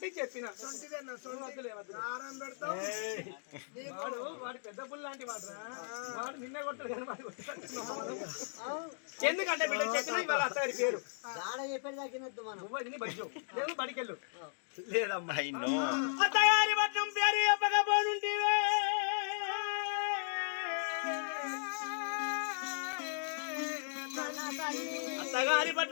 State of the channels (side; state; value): right; silent; digital silence